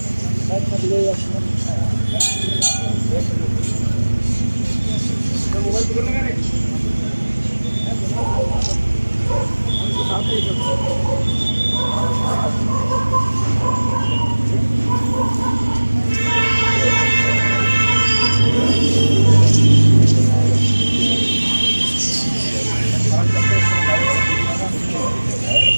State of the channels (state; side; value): inverted; both; correlation -1.00